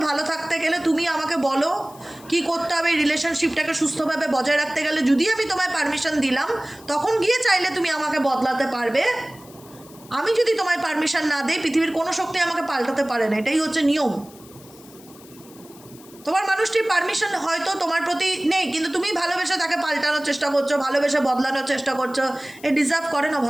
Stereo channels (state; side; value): noise; left; hiss, 23 dB below the sound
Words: ভালো থাকতে গেলে, তুমি আমাকে বলো কি করতে হবে রিলেশনশিপটাকে সুস্থভাবে বজায় রাখতে গেলে, যদি আমি তোমায় পারমিশন দিলাম, তখন গিয়ে চাইলে তুমি আমাকে বদলাতে পারবে। আমি যদি তোমায় পারমিশন না দিই, পৃথিবীর কোনো শক্তি আমাকে পাল্টাতে পারে না। এটাই হচ্ছে নিয়ম। তোমার মানুষটির পারমিশন হয়তো তোমার প্রতি নেই, কিন্তু তুমি ভালোবেসে তাকে পাল্টানোর চেষ্টা করছো, ভালোবেসে বদলানোর চেষ্টা করছো। এ ডিজার্ভ করে না